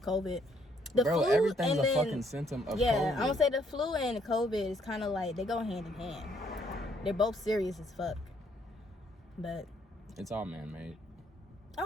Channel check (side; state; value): both; normal; correlation 0.68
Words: COVID. The flu, everything's a fucking symptom of COVID. Yeah, I'm gonna say the flu and COVID is kind of like they go hand in hand. They're both serious as fuck. But it's all man-made.